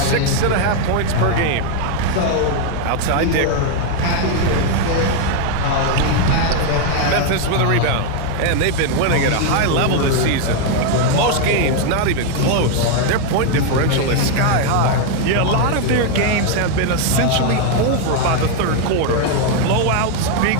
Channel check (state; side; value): different; both; correlation 0.01